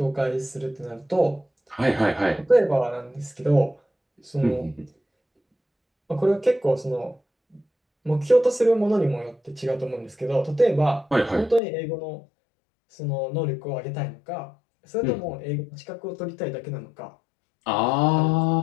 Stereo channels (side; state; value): right; drops out; at 11.6 s